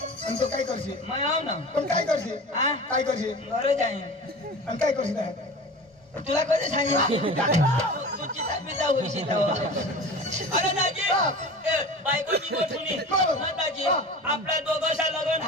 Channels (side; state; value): both; normal; correlation 0.35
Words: तो काय करशील मैं आव ना पण काय करशील हा काय करशील घरे जाईन आणि काय करशील तुला कधी सांगितलं तू चिता पिता होईशील तेव्हा. अरे दाजी बायकोची गोठुनी ना दाजी आपल्या दोघांचा लग्न